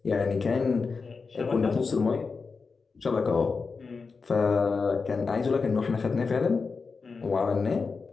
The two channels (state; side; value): quieter; right; 4.7 dB